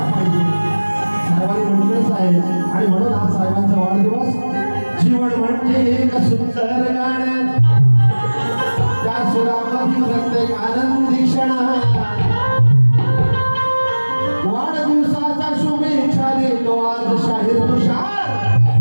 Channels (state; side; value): inverted; both; correlation -1.00